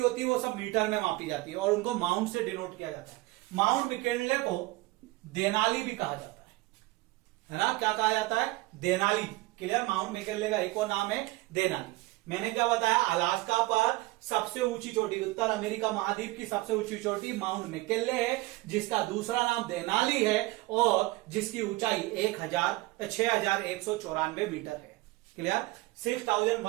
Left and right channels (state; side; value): quieter; left; 20.5 dB